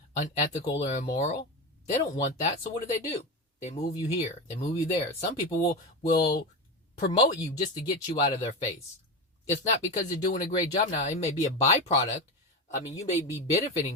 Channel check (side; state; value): both; normal; correlation 0.19